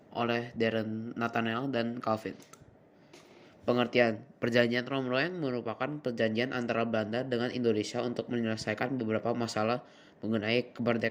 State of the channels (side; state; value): both; identical; correlation 1.00